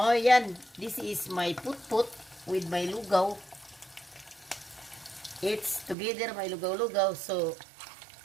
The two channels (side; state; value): left; drops out; at 6.0 s